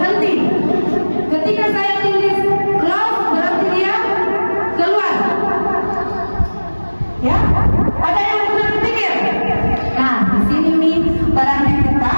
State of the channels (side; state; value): both; inverted; correlation -1.00